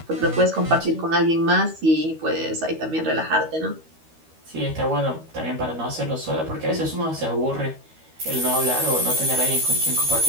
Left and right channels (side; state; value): left; late; 13 ms